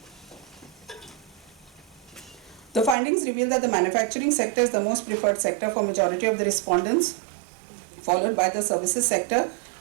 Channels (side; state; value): left; drops out; at 3.0 s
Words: is the most preferred sector for majority of the respondents, followed by the services sector,